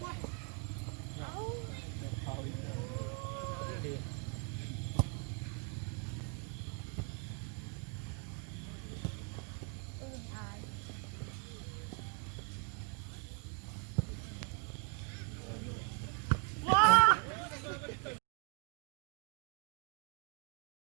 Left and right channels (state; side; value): quieter; left; 37.3 dB